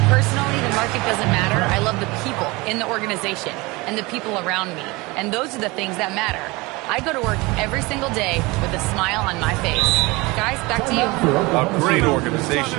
personally, the market doesn't matter. I love the people in the organization and the people around me. And those are the things that matter. I go to work every single day with a smile on my face." Guys, back to you. A great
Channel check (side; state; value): left; quieter; 23.7 dB